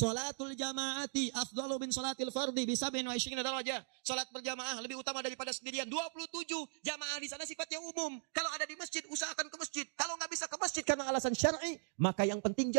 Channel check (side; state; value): left; silent; digital silence